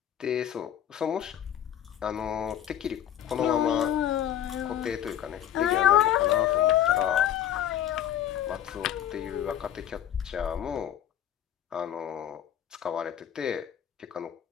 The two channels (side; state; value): right; quieter; 10.7 dB